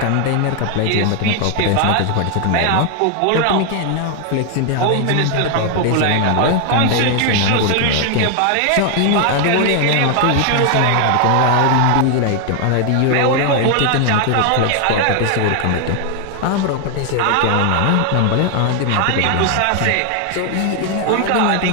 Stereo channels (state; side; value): different; both; correlation 0.00